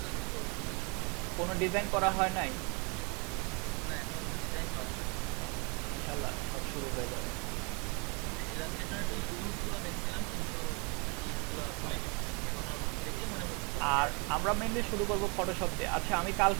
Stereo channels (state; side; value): quieter; left; 32.2 dB